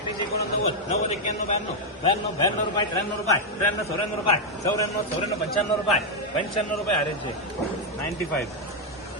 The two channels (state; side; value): normal; both; correlation 0.00